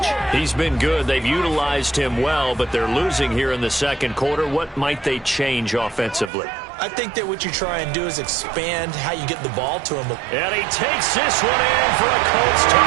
He's been good. They've utilized him well, but they're losing here in the 2nd quarter. What might they change offensively? I think that what you try and do is expand how you get the ball to him. And he takes this one in for a Colts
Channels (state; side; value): drops out; left; at 6.3 s